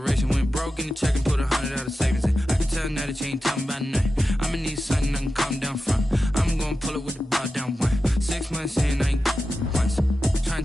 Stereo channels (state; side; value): normal; both; correlation 0.92